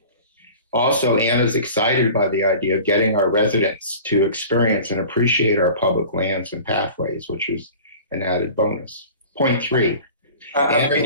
Also, Anna's excited by the idea of getting our residents to experience and appreciate our public lands and pathways, which is an added bonus. Point 3. How can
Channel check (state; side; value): inverted; both; correlation -0.40